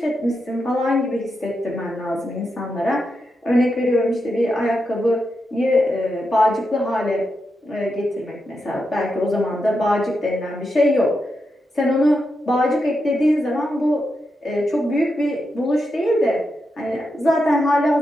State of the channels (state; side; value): normal; both; correlation 0.86